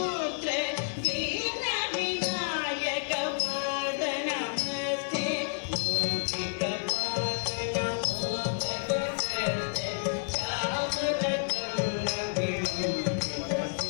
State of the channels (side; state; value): right; silent; digital silence